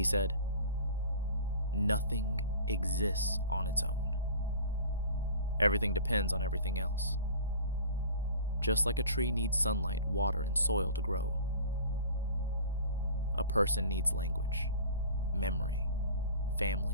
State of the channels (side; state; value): both; inverted; correlation -0.41